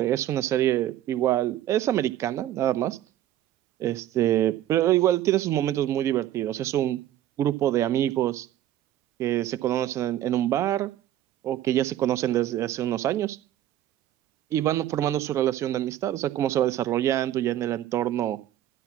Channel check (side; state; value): left; quieter; 12.6 dB